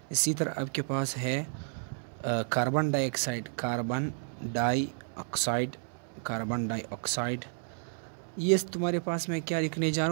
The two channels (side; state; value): left; silent; 57 dB below the other